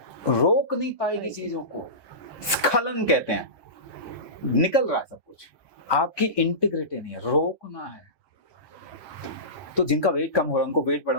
रोक नहीं पाएगी चीजों को, स्खलन कहते हैं, निकल रहा है सब कुछ, आपकी इंटीग्रिटी नहीं है, रोकना है। तो जिनका वेट कम हो रहा है उनको वेट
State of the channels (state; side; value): late; right; 1.2 ms